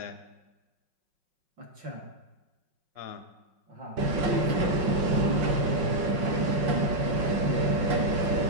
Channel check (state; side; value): late; left; 5.5 ms